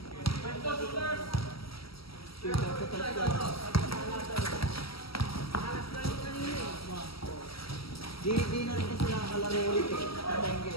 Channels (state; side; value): late; right; 0.75 ms